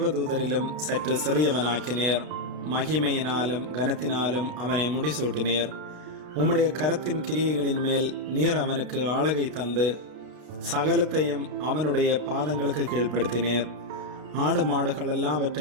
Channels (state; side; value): late; left; 32 ms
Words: சற்று சிறியவனாக்கினீர். மகிமையினாலும் கனத்தினாலும் அவனை முடிசூட்டினீர். உம்முடைய கரத்தின் கிரியைகளின் மேல் நீர் அவனுக்கு ஆளுகை தந்து சகலத்தையும் அவனுடைய பாதங்களுக்கு கீழ்ப்படுத்தினீர். ஆடு மாடுகள்